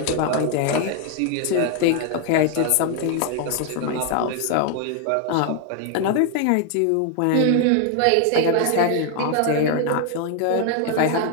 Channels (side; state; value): both; different; correlation 0.00